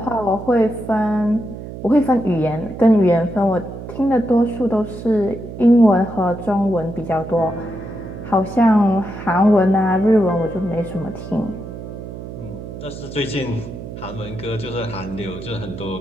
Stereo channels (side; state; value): right; noise; hum, 11 dB below the sound